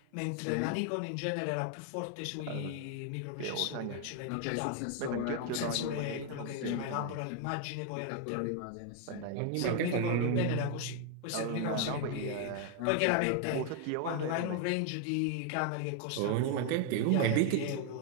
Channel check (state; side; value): different; both; correlation 0.01